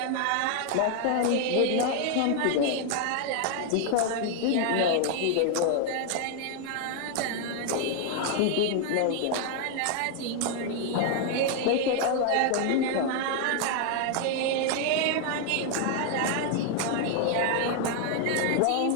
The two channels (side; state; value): both; different; correlation 0.00